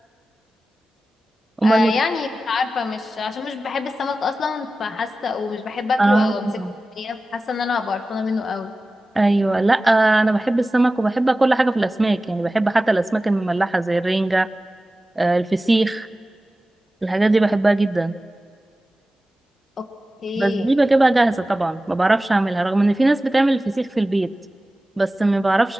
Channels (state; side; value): normal; both; correlation 0.96